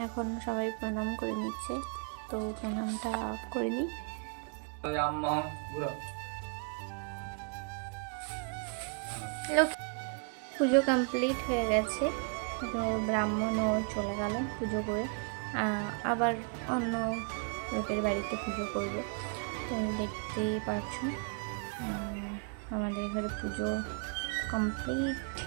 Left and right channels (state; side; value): quieter; left; 39.7 dB